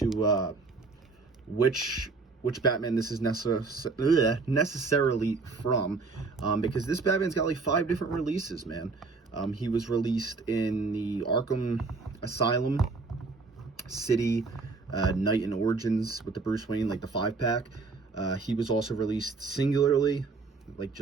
which Batman this is necessarily from, because this Batman's got like 5 different releases, man. He was released in the Arkham Asylum City Night and Origins with the Bruce Wayne, like the 5-pack. He was also released singularly,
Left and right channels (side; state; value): left; quieter; 4.1 dB